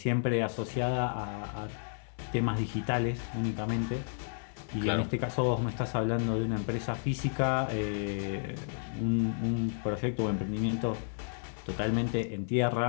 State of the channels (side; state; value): right; silent; 56 dB below the other